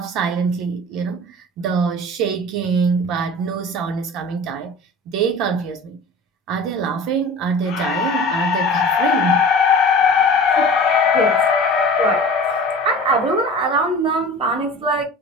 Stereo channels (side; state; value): both; normal; correlation 0.38